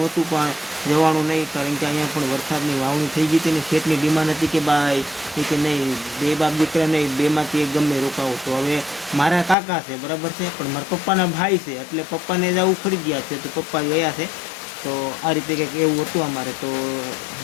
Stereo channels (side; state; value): right; drops out; at 9.6 s